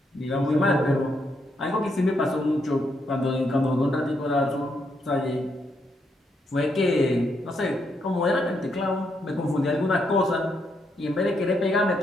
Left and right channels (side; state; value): both; normal; correlation 0.78